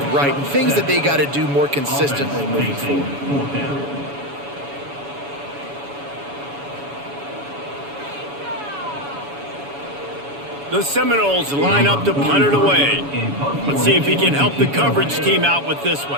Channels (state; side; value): late; left; 7.1 ms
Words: right and things that they got to do more consistently moving forward. The Seminoles line up to punt it away. Let's see if he can help the coverage team out with this